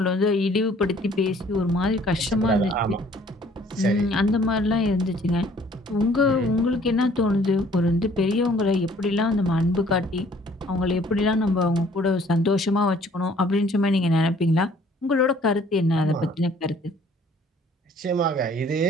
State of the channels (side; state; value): both; normal; correlation 0.58